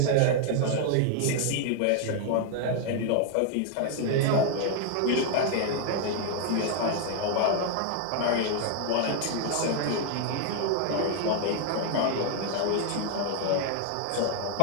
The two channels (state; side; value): different; both; correlation 0.00